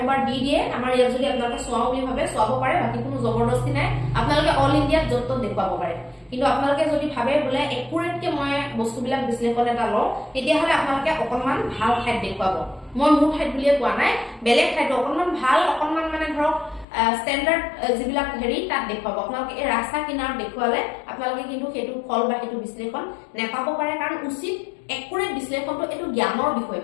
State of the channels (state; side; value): drops out; right; at 16.9 s